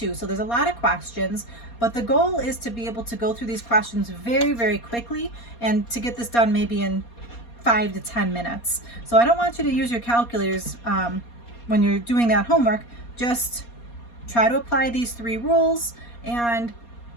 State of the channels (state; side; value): late; right; 4.2 ms